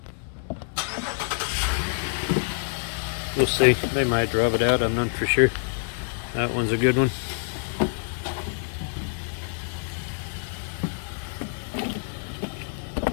We'll see. They might drop it out. I'm not for sure. That one's a good one.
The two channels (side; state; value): right; silent; 61 dB below the other